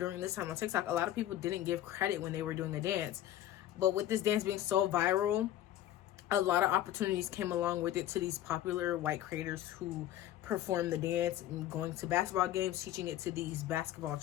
this time on TikTok, a lot of people didn't give credit when they were doing a dance. But with this dance being so viral, a lot of opportunities came along with it to these popular white creators who perform the dance, and going to basketball games, teaching it to these basketball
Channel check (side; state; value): right; quieter; 12.8 dB